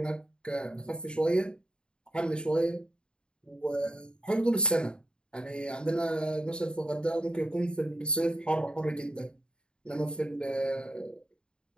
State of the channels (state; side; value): late; right; 0.051 ms